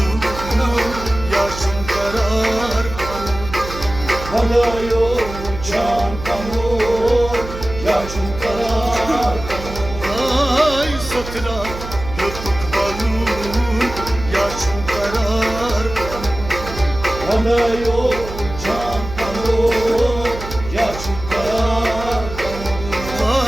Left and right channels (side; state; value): right; noise; hum, 10 dB below the sound